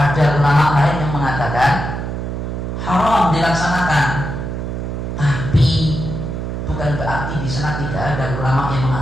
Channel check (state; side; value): noise; right; hum, 4 dB below the sound